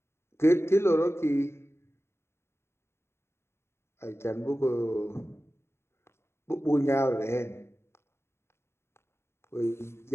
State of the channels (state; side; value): late; right; 0.12 ms